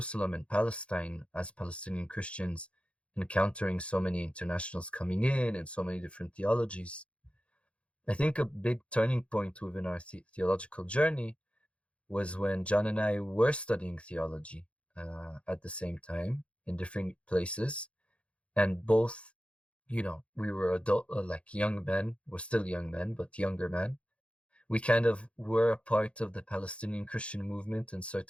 and Palestine, as Palestinian Christians encountering so many internationals coming in and so many different theologies. I think a big turning point within our theological journey was when John and I were studying theology at the same time in different places. And both, we were young men. We're still young men, but younger men. We kind of were a part of the Palestinian Christian movement in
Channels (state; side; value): late; right; 0.060 ms